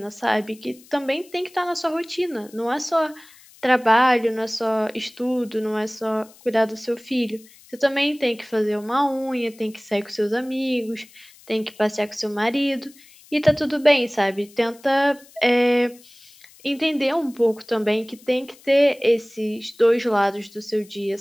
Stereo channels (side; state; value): left; noise; hiss, 25 dB below the sound